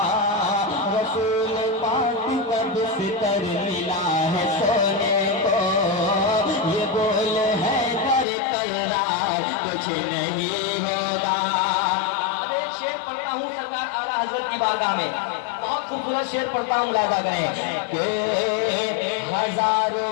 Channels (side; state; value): right; drops out; at 8.2 s